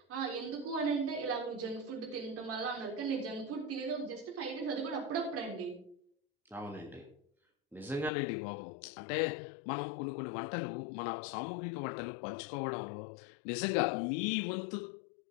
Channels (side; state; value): right; drops out; at 8.1 s